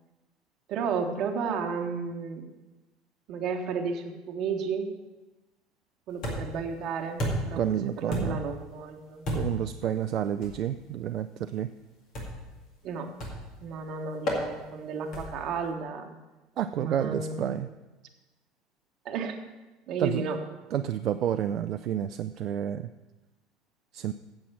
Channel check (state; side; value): quieter; left; 5.9 dB